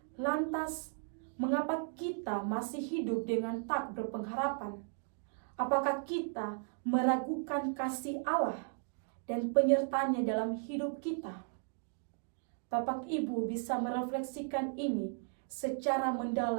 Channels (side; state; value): left; silent; 54 dB below the other